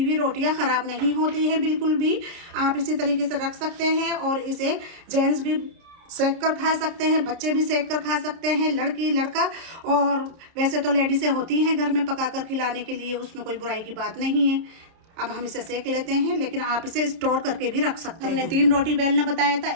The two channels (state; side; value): late; left; 30 ms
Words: हुई रोटियां खराब नहीं होती हैं बिल्कुल भी। आप इसी तरीके से रख सकते हैं और इसे जेंट्स भी सेक कर खा सकते हैं, बच्चे भी सेक कर खा सकते हैं, लड़की लड़का। और वैसे तो लेडीज़ें होती हैं घर में पकाकर खिलाने के लिए, उसमें कोई बुराई की बात नहीं है। अब हम इसे सेक लेते हैं, लेकिन आप इसे स्टोर करके भी रख सकते हैं। हमने 3 रोटी बेलना बताया था,